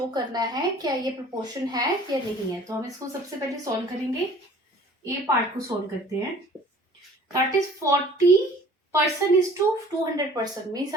करना है क्या ये प्रोपोर्शन है या नहीं है। तो हम इसको सबसे पहले सॉल्व करेंगे। ए पार्ट को सॉल्व करते हैं। That is 40% is to 200%, means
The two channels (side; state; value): both; normal; correlation 0.49